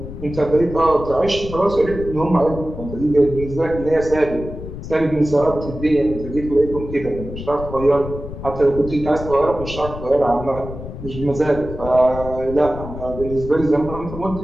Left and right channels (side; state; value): left; noise; rumble, 10 dB below the sound